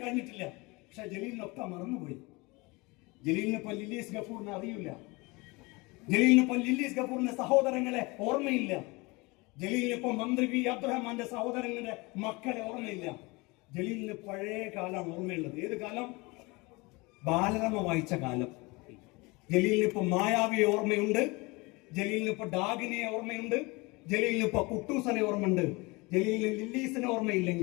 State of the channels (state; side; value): quieter; right; 25.2 dB